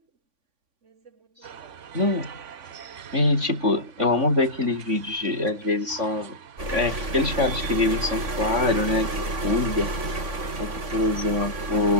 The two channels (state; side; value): late; left; 3.5 ms